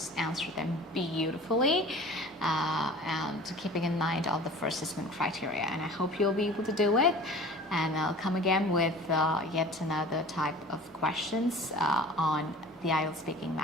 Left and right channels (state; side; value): normal; both; correlation 0.42